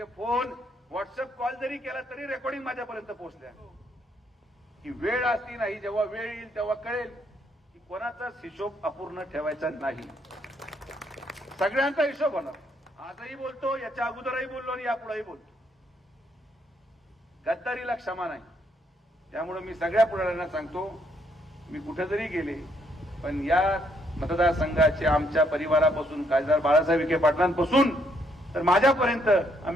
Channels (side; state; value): both; normal; correlation 0.71